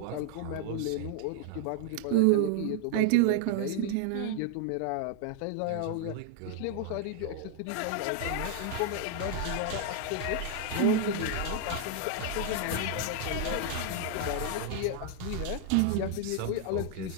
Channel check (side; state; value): both; different; correlation 0.00